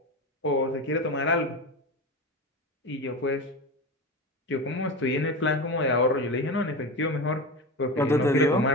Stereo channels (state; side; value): normal; both; correlation 0.24